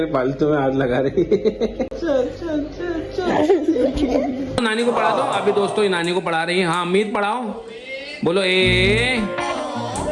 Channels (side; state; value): both; identical; correlation 1.00